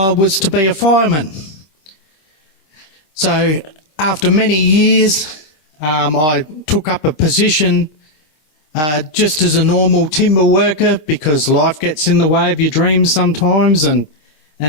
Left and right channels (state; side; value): late; right; 26 ms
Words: was to be a fireman. So after many years, I took up a position just as a normal timber worker, because life gets in the way of your dreams sometimes, and